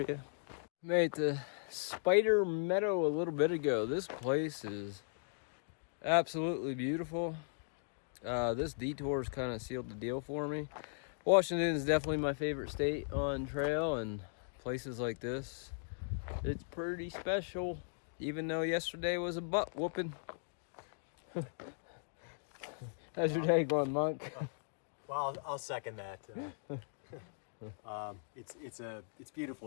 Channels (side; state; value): right; silent; digital silence